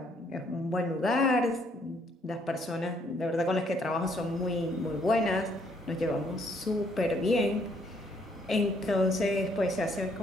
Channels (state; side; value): normal; both; correlation 0.68